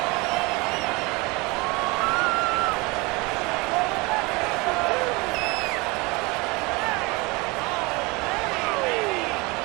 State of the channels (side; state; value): left; quieter; 25.7 dB